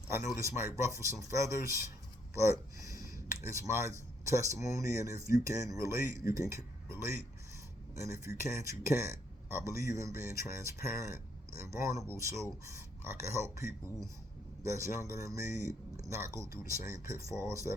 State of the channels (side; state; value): both; normal; correlation 0.71